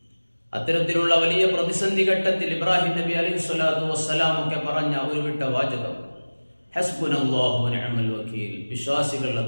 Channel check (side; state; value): both; inverted; correlation -1.00